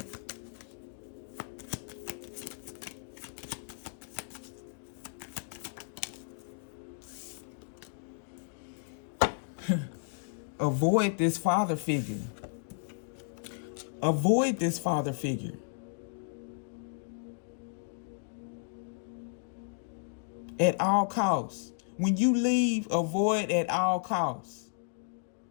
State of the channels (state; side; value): silent; right; digital silence